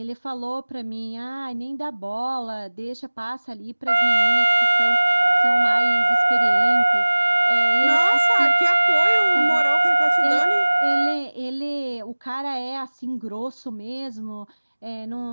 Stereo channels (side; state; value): both; inverted; correlation -1.00